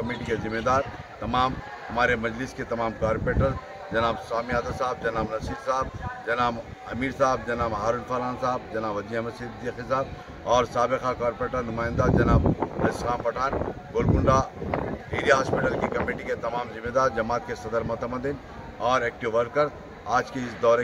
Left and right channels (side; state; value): both; identical; correlation 1.00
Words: के ज़िम्मेदार तमाम हमारे मजलिस के तमाम कारपोरेटर जनाब सामी यादव साहब, जनाब नसीर साहब, जनाब अमीर साहब, जनाब हारून फरहान साहब, जनाब वजी अहमद सिद्दीकी साहब और साबिक़ा कारपोरेटर नुमाइंदा जनाब इसलाम पठान, गोलकुंडा एरिया हॉस्पिटल की कमेटी के तमाम ज़िम्मेदार, जमात के सदर मोतमदीन और एक्टिव वर्कर आज के इस दौरे